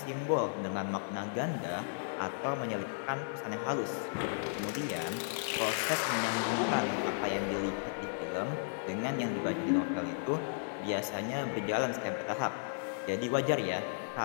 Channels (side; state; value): right; silent; digital silence